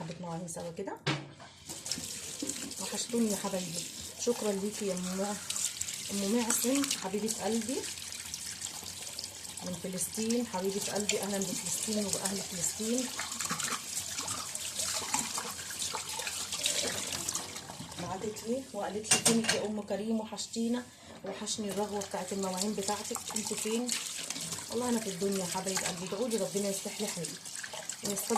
مواعين سوا كده. وحشتوني يا حبايبي. شكرا ليكي يا ام معصم حبيبه قلبي من فلسطين، حبيبه قلبي. اهلا بفلسطين وباهل فلسطين. بعتت لي وقالت لي فينك يا ام كريم، وحشتينا وحشني الرغوه بتاعت المواعين بتاعتك، انت فين؟ والله انا في الدنيا يا حبايب قلبي. ادعوا لي ربنا يصلح لي حالي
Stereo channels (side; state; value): both; identical; correlation 1.00